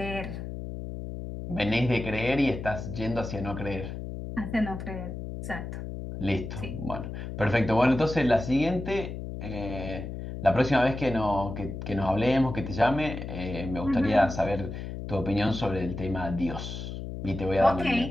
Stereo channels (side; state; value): left; noise; hum, 7 dB below the sound